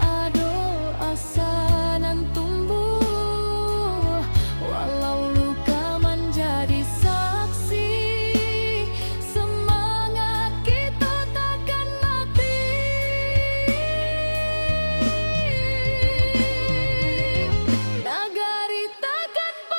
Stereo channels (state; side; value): inverted; both; correlation -1.00